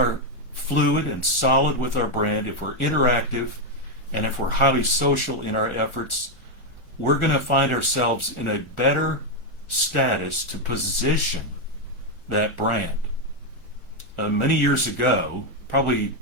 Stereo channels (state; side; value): late; right; 1.4 ms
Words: fluid and solid with our brand, if we're interactive, and if we're highly social in our efforts, we're going to find ourselves in a better status to position that brand. Many years ago, probably